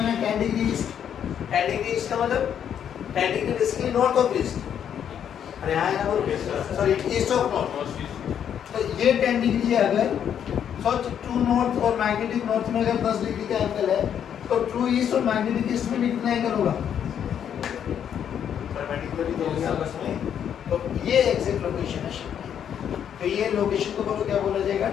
है 10 डिग्री ईस्ट। 10 डिग्री ईस्ट का मतलब 10 degree basically north of east. अरे हाँ ना बोलो, सॉरी ईस्ट ऑफ नॉर्थ। तो ये 10 डिग्री है। अगर सोच, ट्रू नॉर्थ और मैग्नेटिक नॉर्थ में अगर 10 डिग्री का एंगल है तो ट्रू ईस्ट और मैग्नेटिक ईस्ट में कितना एंगल होगा? तो ये एग्जैक्ट लोकेशन है शिप की। तो ये लोकेशन को बोलो क्या बोला जाएगा,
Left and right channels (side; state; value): right; quieter; 8.9 dB